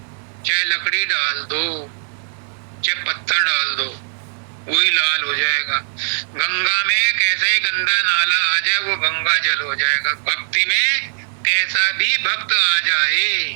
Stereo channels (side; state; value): left; silent; digital silence